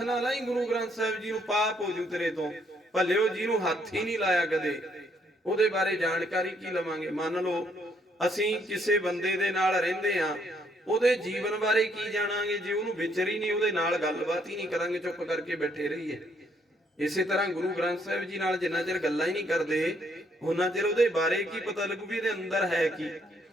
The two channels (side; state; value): both; normal; correlation 0.70